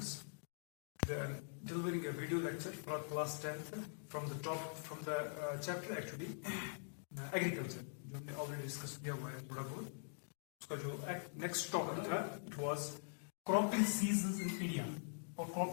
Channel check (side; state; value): right; silent; digital silence